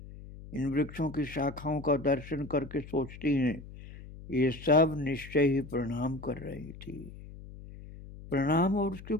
इन वृक्षों की शाखाओं का दर्शन करके सोचती हैं, ये सब निश्चय ही प्रणाम कर रही थी। प्रणाम और उसके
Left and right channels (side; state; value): left; noise; hum, 15 dB below the sound